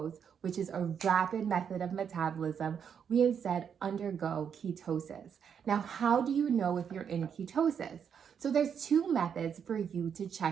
which is a rapid method of metabolism, we instead undergo ketosis. Now, how do you know if you're in ketosis? So there's 2 methods for you to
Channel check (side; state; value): left; quieter; 7.6 dB